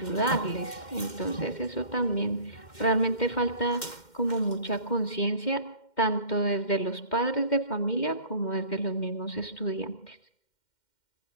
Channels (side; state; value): right; late; 2.1 ms